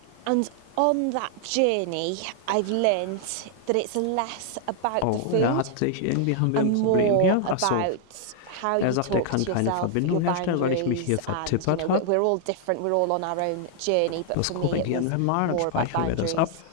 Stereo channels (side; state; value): both; different; correlation 0.00